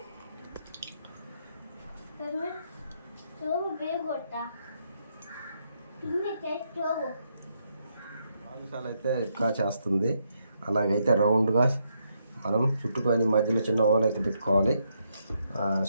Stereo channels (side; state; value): both; inverted; correlation -0.78